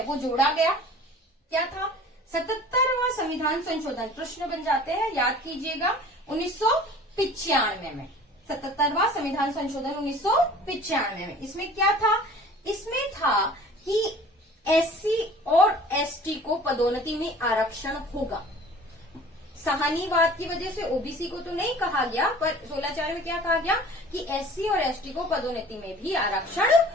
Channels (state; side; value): normal; both; correlation 0.46